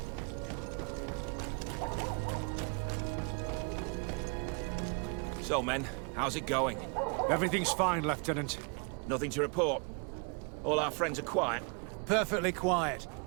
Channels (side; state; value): left; quieter; 35.6 dB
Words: So, men, how's it going? Everything's fine, Lieutenant. Nothing to report? All our friends are quiet? Perfectly quiet.